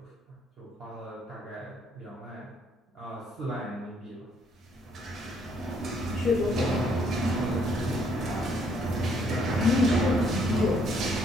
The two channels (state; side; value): normal; both; correlation 0.67